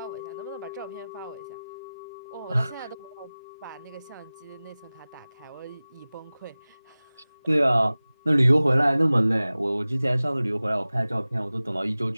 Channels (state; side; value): inverted; both; correlation -0.98